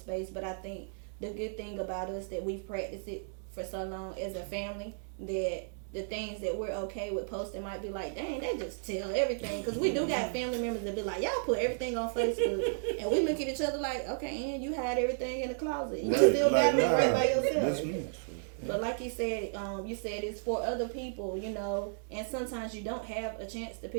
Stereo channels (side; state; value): left; silent; digital silence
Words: But I think the good thing about us that we've practiced it for so long as a family, that the things that we're okay with posting might be like, dang, they just tell everything. Because we do got family members that be like, y'all put everything on Facebook. And we look at each other like, okay, and you hide everything in the closet. You still got it right by yourself. But like you said it's for other people, you know. And sometimes you don't have a chance to